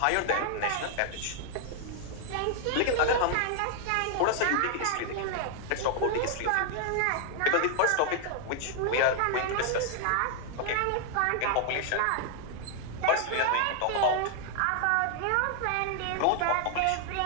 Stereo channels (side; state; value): both; different; correlation 0.00